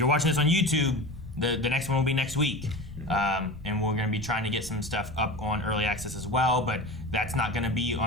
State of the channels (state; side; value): normal; both; correlation 0.30